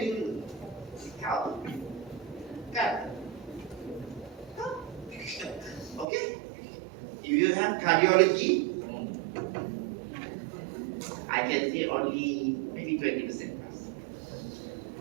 you help? Can? Okay. If you have cardiology, I can say only maybe 20%.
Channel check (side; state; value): left; drops out; at 6.1 s